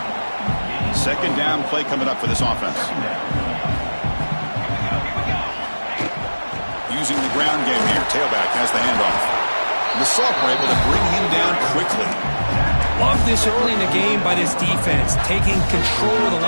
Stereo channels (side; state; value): both; inverted; correlation -1.00